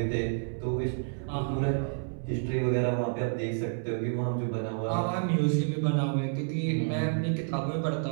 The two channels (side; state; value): left; silent; 58 dB below the other